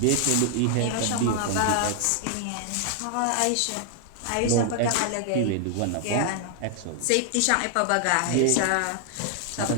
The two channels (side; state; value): both; different; correlation 0.00